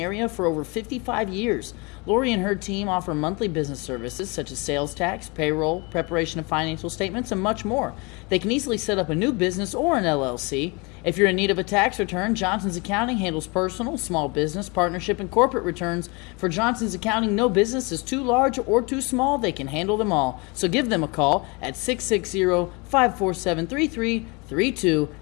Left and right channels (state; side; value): quieter; right; 28.6 dB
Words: for over 55 years. Lori and her team offer monthly business services such as sales tax, payroll, preparation of financial statements, and much more. They can easily set up a new business or an LLC. If you're in need of a tax return, Johnson's Accounting handles personal, small business, partnership, and corporate returns. For Johnson's Accounting, no business is too large or too small. They can handle them all. So give them a call at 660-547-3332